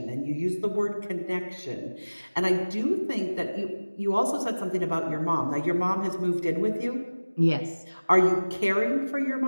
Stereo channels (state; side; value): inverted; both; correlation -1.00